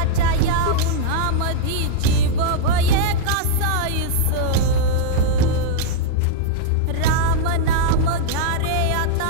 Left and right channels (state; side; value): different; both; correlation -0.02